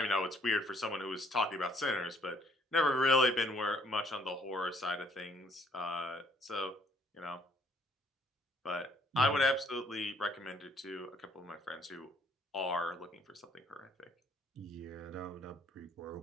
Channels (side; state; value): both; normal; correlation 0.64